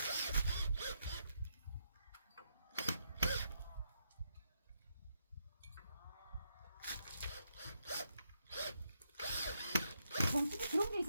정수기 그런 게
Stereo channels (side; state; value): both; inverted; correlation -0.79